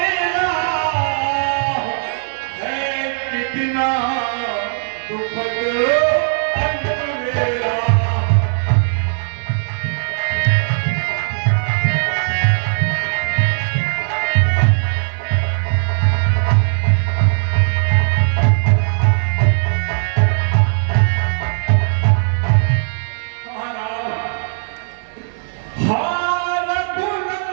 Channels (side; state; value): left; silent; 57 dB below the other